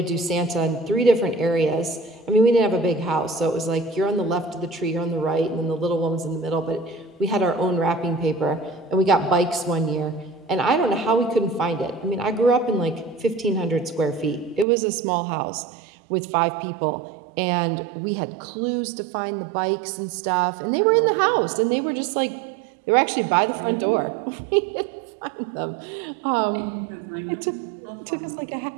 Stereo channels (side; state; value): left; drops out; at 14.7 s